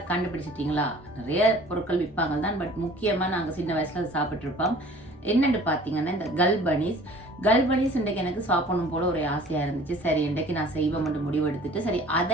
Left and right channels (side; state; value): both; normal; correlation 0.48